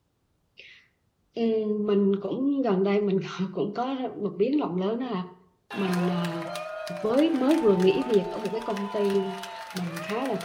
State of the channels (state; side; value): identical; both; correlation 1.00